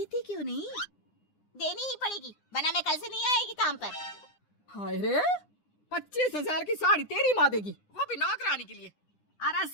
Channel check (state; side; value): late; right; 9.8 ms